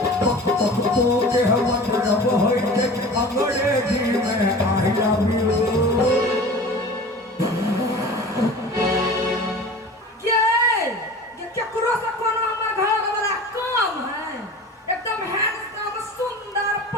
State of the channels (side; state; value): both; normal; correlation 0.38